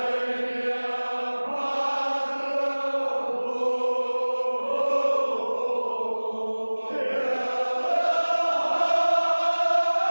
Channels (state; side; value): inverted; both; correlation -1.00